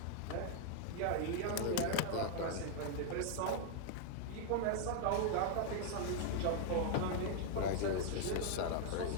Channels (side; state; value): both; different; correlation 0.00